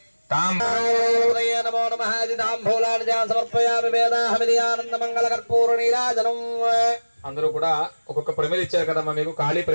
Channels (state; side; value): inverted; both; correlation -1.00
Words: నమో నమః. తాంబూలాన్ని సమర్పయామి. వేదాహమిలియానంద మంగళ కర్పూర నీరాజనం. అందరూ కూడా ఒక్కొక్క ప్రమిది ఇచ్చారు కదమ్మా, మీకు ఖాళీ